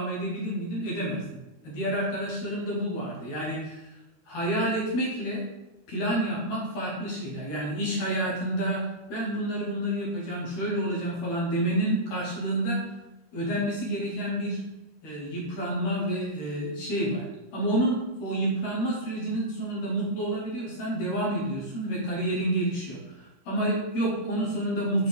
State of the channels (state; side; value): late; right; 13 ms